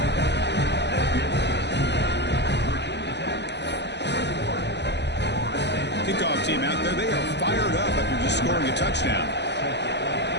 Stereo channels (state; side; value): late; right; 0.50 ms